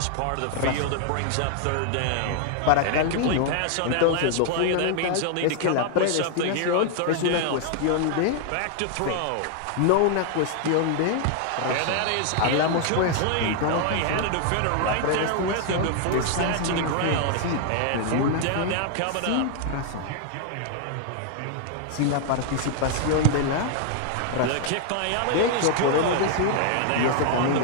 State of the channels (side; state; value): both; different; correlation 0.00